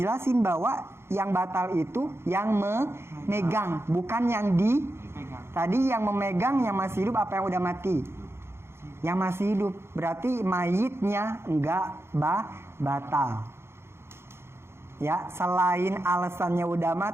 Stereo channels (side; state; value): left; late; 0.12 ms